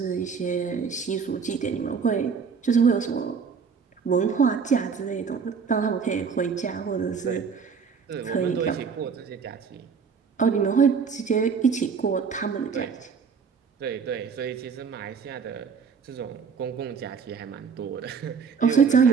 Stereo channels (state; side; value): quieter; left; 5.9 dB